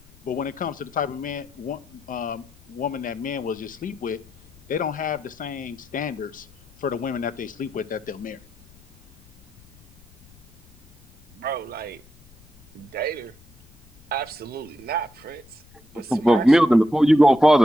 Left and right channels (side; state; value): left; noise; rumble, 27 dB below the sound